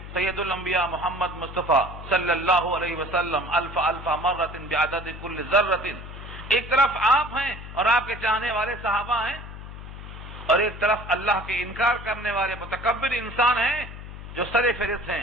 سید الانبیاء محمد مصطفیٰ صلی اللہ علیہ وسلم الف مرۃ بعدد کل ذرۃ، ایک طرف آپ ہیں اور آپ کے چاہنے والے صحابہ ہیں، اور ایک طرف اللہ کے انکار کرنے والے متکبر انسان ہیں جو سر فہرست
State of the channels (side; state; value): left; noise; hum, 12 dB below the sound